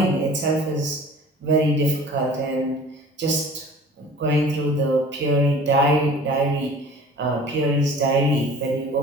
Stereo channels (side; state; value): both; normal; correlation 0.45